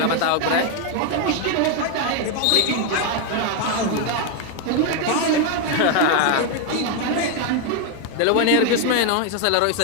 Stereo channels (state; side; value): different; both; correlation 0.01